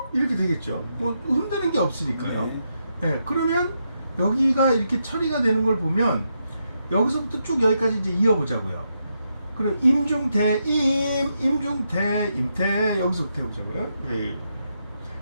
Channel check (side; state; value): both; inverted; correlation -0.82